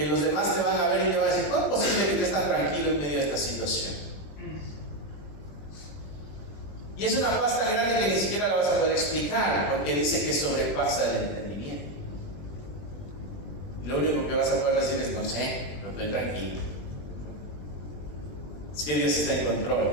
los demás te van a ver y te van a decir: ¿cómo es posible que estés tan tranquilo en medio de esta situación? Y es una paz tan grande que ni siquiera la vas a poder explicar, porque dice que sobrepasa el entendimiento. Lo único que vas a poder decir es: no sé, pero estoy tranquilo. Es que Dios está en control.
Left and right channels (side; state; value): right; late; 21 ms